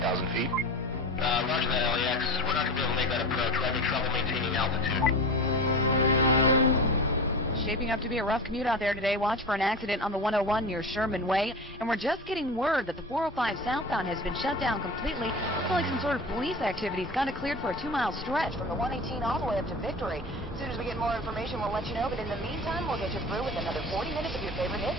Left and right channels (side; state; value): both; normal; correlation 0.30